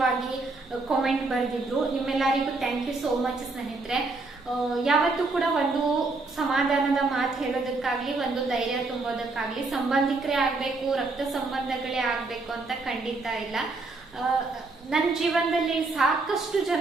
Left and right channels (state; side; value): quieter; left; 3.5 dB